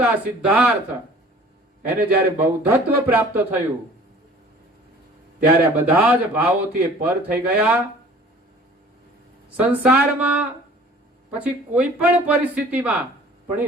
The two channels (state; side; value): normal; both; correlation 0.49